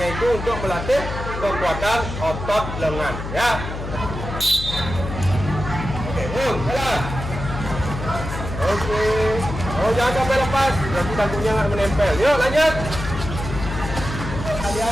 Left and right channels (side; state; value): left; noise; hum, 7 dB below the sound